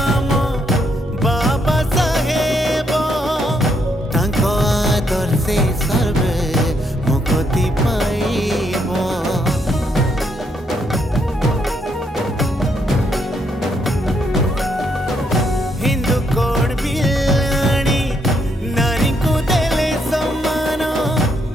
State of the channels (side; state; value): both; normal; correlation 0.75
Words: बाबा साहेब। तांको आदर्शे सर्वे मुक्ति पाइब। हिंदू कोड बिलाणी नारी को देले सम्मान।